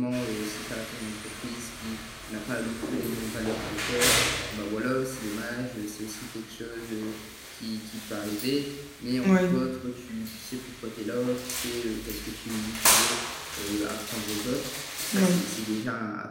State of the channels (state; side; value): identical; both; correlation 1.00